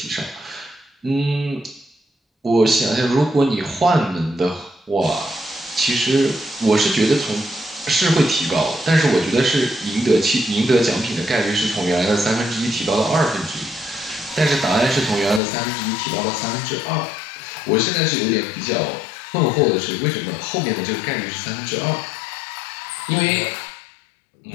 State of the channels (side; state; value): right; drops out; at 15.4 s